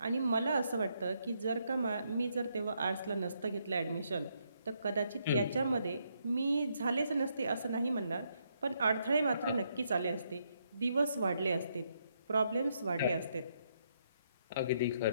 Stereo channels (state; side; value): inverted; both; correlation -0.76